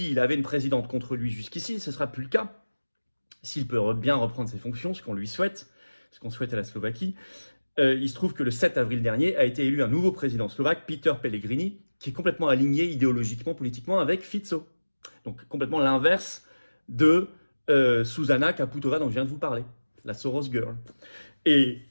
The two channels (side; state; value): both; inverted; correlation -1.00